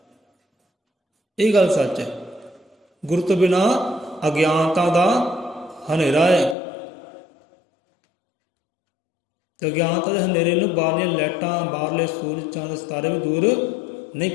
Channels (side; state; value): right; drops out; at 6.6 s